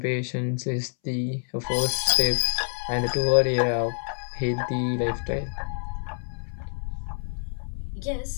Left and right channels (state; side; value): silent; right; 60 dB below the other